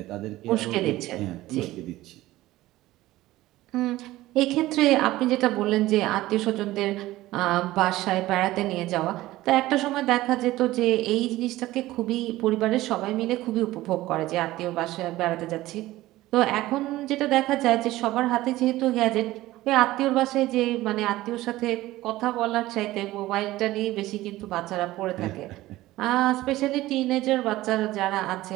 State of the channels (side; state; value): left; quieter; 16.8 dB